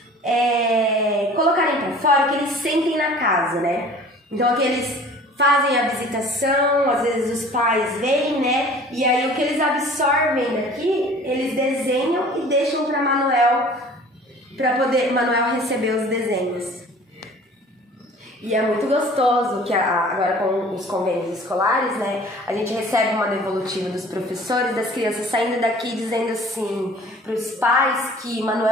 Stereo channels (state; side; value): normal; both; correlation 0.47